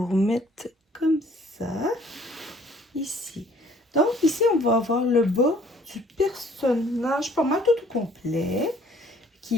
remettre comme ça. Ici. Donc, ici, on va avoir le bas du personnage, pas mal tout au complet,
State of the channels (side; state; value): both; normal; correlation 0.57